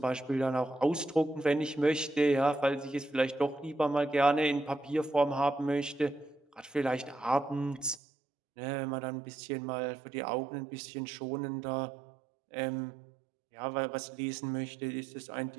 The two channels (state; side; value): drops out; left; at 8.0 s